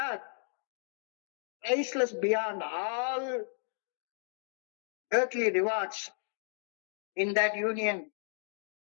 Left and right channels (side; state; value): right; silent; digital silence